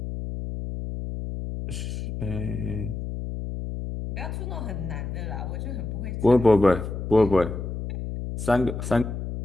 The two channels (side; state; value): left; noise; hum, 5 dB below the sound